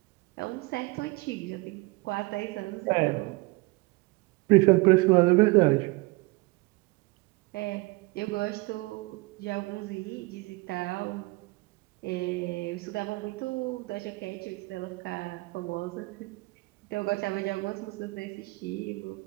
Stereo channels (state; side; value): quieter; left; 24.2 dB